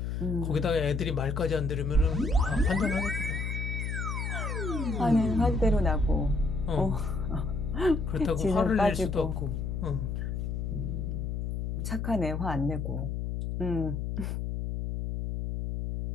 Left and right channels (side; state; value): left; noise; hum, 2 dB below the sound